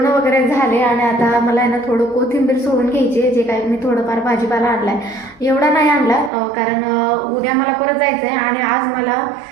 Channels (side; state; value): left; drops out; at 6.3 s